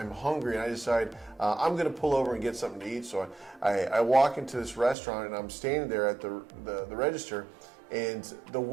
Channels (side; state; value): left; drops out; at 5.0 s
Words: hungry, and I decide I'm gonna pull over and get something to eat. So I walk into this restaurant and I'm standing there at the register, and the